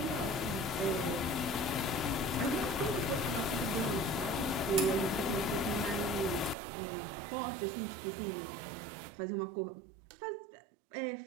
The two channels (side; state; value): left; drops out; at 6.6 s